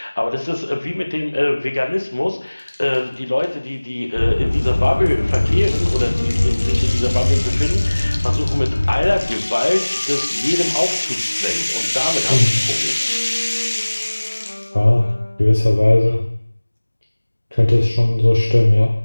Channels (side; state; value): both; inverted; correlation -1.00